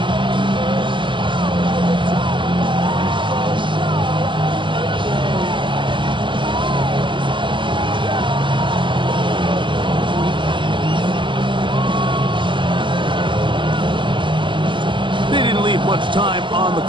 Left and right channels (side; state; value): left; late; 0.24 ms